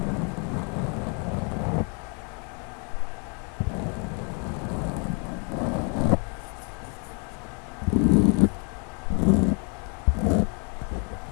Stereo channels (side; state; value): right; quieter; 35.7 dB